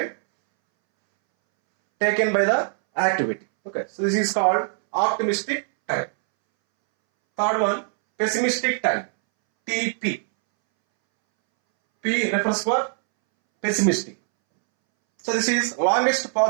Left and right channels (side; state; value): left; silent; 63 dB below the other